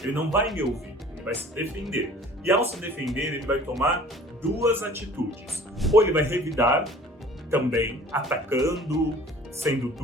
Ele não vai me ouvir, ele vai se defender. E ao se defender, ele vai tomar duas atitudes. Ou ele vai revidar, também atacando, sendo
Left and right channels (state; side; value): normal; both; correlation 0.49